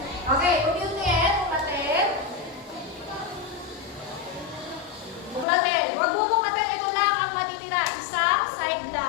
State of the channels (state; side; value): drops out; right; at 5.5 s